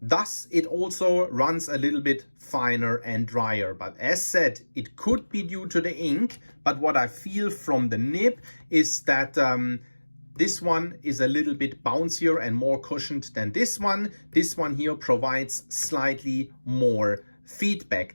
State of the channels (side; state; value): both; inverted; correlation -1.00